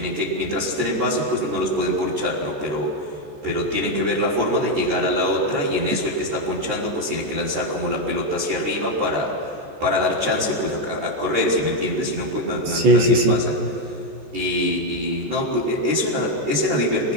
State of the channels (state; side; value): late; left; 14 ms